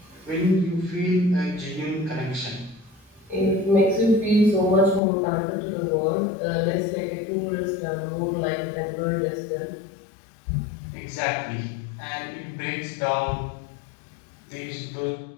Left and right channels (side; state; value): right; drops out; at 5.0 s